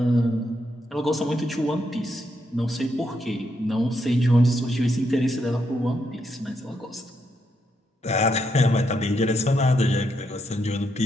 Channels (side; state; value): both; normal; correlation 0.79